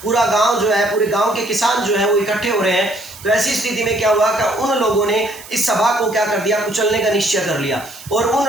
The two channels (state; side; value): noise; right; hiss, 17 dB below the sound